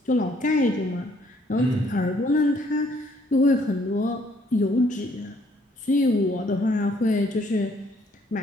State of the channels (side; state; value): both; normal; correlation 0.65